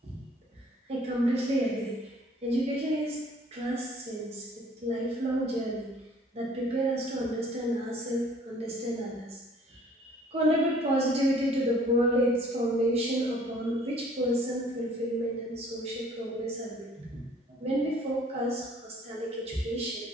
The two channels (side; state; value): both; normal; correlation 0.56